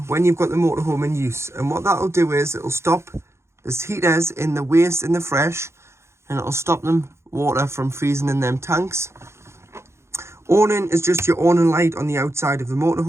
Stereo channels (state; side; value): late; left; 0.13 ms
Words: when you've got the motorhome in use, and what that'll do is it'll stop the heaters in the waste and the fresh, and it'll stop them water from freezing in them tanks. Awning is just your awning light on the outside of the